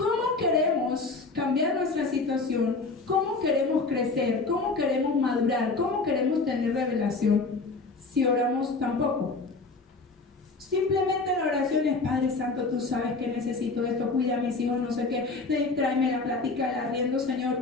queremos cambiar nuestra situación? ¿Cómo queremos crecer? ¿Cómo queremos madurar? ¿Cómo queremos tener revelación? Si oramos tampoco. Simplemente la oración es, Padre Santo, tú sabes que necesito esto, cuida a mis hijos, no sé qué, tráeme la plática, el arriendo, Señor,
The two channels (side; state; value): right; quieter; 3.8 dB